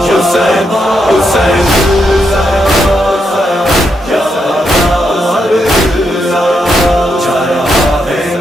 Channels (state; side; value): normal; both; correlation 0.81